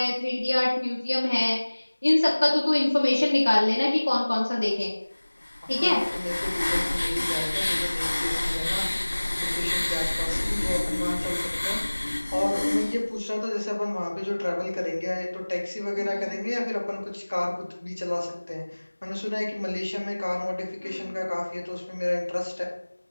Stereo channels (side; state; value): both; inverted; correlation -1.00